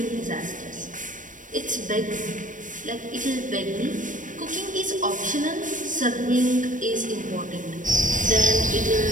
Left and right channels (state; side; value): late; left; 0.38 ms